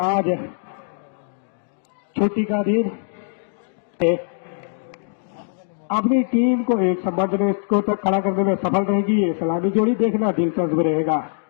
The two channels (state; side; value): silent; right; digital silence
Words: आज छुट्टी का दिन अपनी टीम को एक सम्मानजनक स्कोर तक खड़ा करने में सफल रहेगी। ये सलामी जोड़ी देखना दिलचस्प रहेगा।